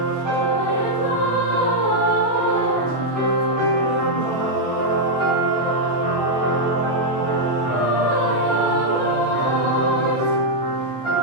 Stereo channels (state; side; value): late; right; 16 ms